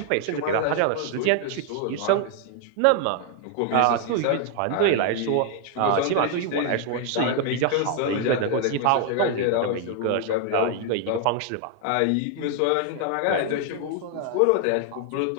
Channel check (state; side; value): different; both; correlation 0.00